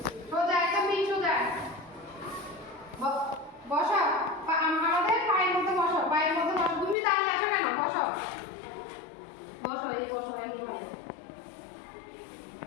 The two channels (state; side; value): drops out; right; at 7.0 s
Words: সোজা একদম ঠিক সোজা। বসো। আমাদের পায়ের মধ্যে বসো, পায়ের মধ্যে বসো। তুমি দাঁড়িয়ে আছো কেন? বসো বসো, এই বসো এইভাবে।